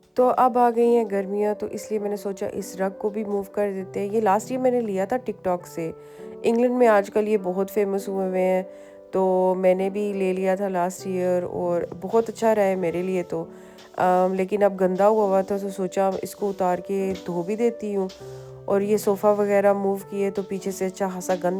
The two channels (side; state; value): both; identical; correlation 1.00